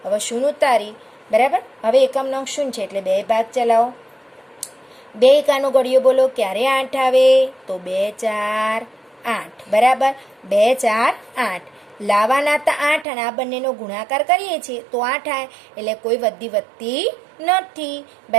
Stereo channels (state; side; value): drops out; left; at 13.1 s